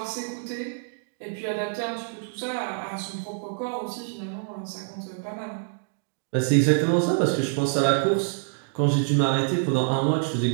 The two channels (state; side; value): silent; left; digital silence